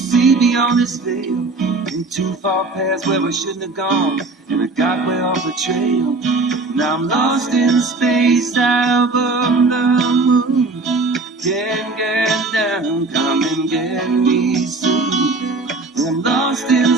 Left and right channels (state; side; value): quieter; left; 3.4 dB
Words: beyond this veil. In too far past where I shouldn't have gone, and I got way off the trail. Now I'm lost in space high above the moon. Can't get down, come and get me soon. I'm lost in